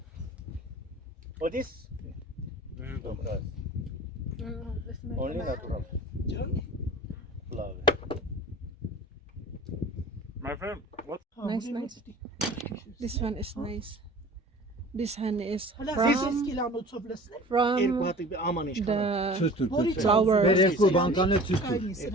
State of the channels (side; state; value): both; normal; correlation 0.43